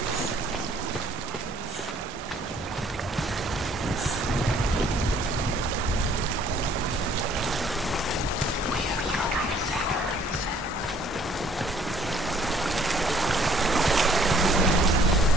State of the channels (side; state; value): both; normal; correlation 0.60